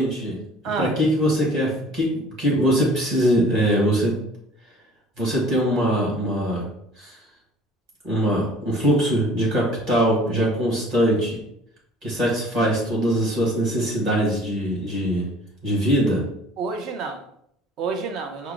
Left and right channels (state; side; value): normal; both; correlation 0.50